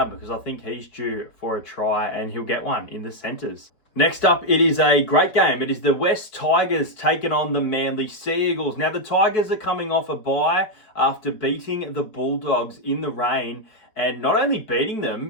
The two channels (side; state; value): right; late; 4.7 ms